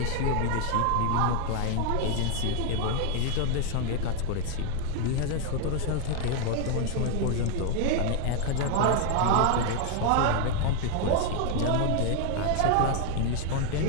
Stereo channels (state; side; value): different; both; correlation 0.01